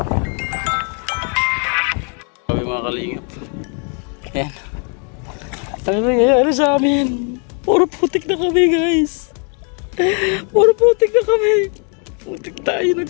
Mga kalingap. Ayan. Ano nangyayari sa amin? Puro putik na kami guys. Puro putik na kami. Putik tayo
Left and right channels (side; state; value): right; quieter; 39.6 dB